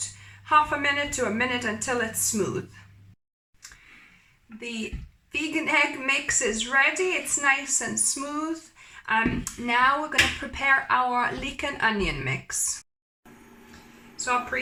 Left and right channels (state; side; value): identical; both; correlation 1.00